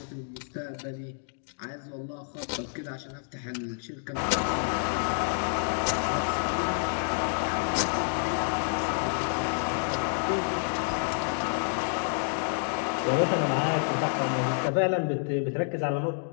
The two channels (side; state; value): right; silent; digital silence